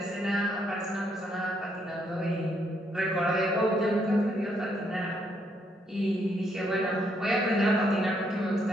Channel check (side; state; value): both; normal; correlation 0.73